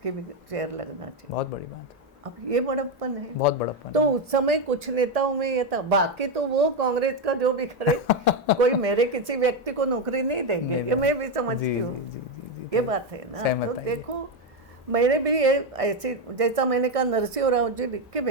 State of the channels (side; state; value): both; normal; correlation 0.07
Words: भी चेयर लगना चाहिए। बहुत बड़ी बात। अब ये बड़प्पन है, बहुत बड़प्पन। तो उस समय कुछ नेताओं में ये था, बाकी तो वो कांग्रेस का जो भी करे कोई मेरे किसी व्यक्ति को नौकरी नहीं देंगे, ये मैं भी समझती हूँ। ये बात है ना। तो देखो मेरे भी ये ऐसे, जैसा मैंने कहा नरसिंह राव जी लिख के